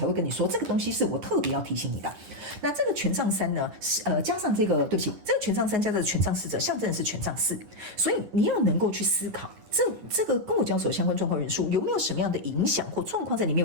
会跟你说，这个东西是我特别要提醒你的。那这个权杖3呢，加上这个，对不起，这个权杖3加上权杖侍者，象征的是权杖4，所以你要能够去思考，这个跟我交手相关状况人数有没有什么样的影响或状况在里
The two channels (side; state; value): left; late; 10 ms